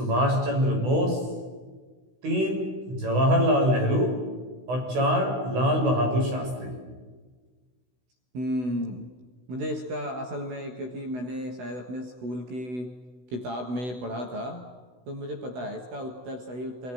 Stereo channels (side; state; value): left; late; 16 ms